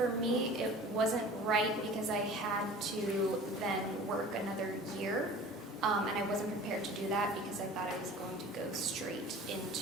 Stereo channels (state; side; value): normal; both; correlation 0.42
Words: me, it wasn't right because I had to then work another year. and I wasn't prepared to do that because I thought I was going to go straight